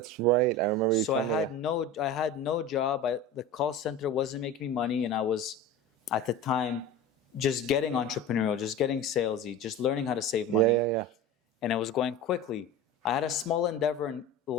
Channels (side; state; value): both; normal; correlation 0.32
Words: right. I remember you. So I telling me. had no job. The call center wasn't making me money, and I was at the time just getting entrepreneurial, just getting salesy, just learning how to save money. Yeah. And it was going quickly. I had a small endeavor in